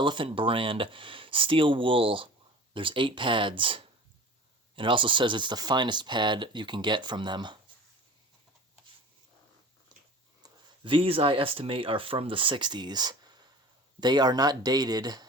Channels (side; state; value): both; normal; correlation 0.39